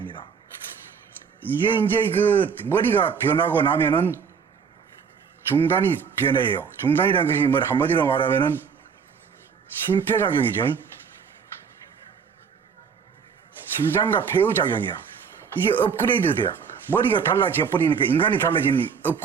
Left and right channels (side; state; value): left; quieter; 6.5 dB